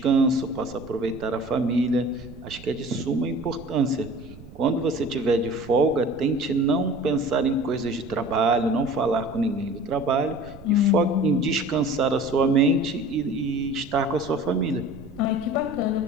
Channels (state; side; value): noise; right; rumble, 18 dB below the sound